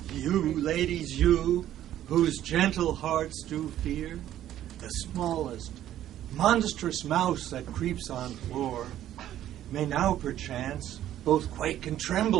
You, ladies, you, whose gentle hearts do fear the smallest, monstrous mouse that creeps on floor, may now perchance both quake and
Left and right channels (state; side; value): quieter; left; 12.2 dB